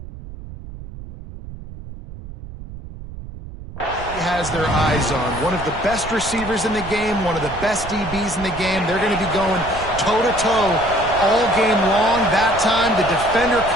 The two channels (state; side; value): noise; right; rumble, 13 dB below the sound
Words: has their eyes on. One of the best receivers in the game, one of the best DBs in the game. They're going to be going toe-to-toe all game long. That time, the defender